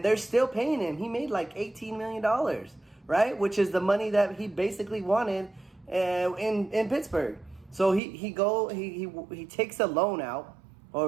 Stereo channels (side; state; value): left; drops out; at 8.0 s